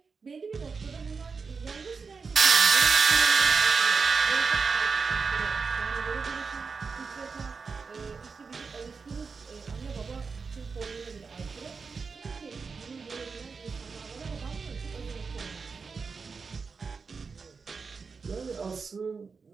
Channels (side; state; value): left; quieter; 5.1 dB